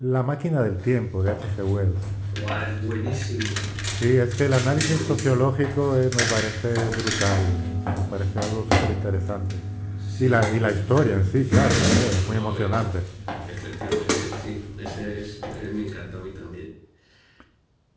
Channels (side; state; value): both; identical; correlation 1.00